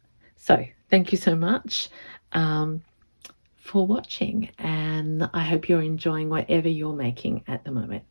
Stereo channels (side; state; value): both; inverted; correlation -1.00